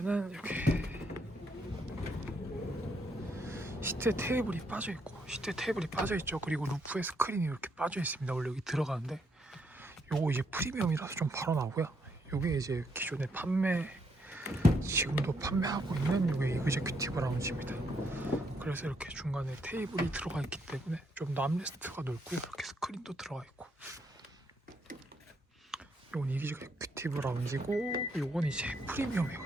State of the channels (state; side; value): normal; both; correlation 0.74